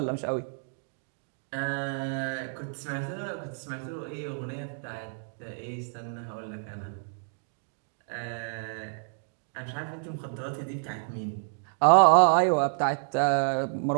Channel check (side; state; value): left; silent; digital silence